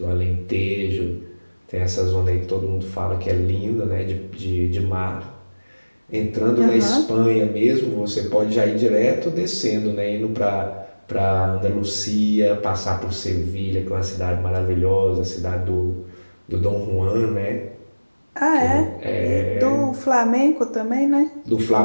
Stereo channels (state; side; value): inverted; both; correlation -1.00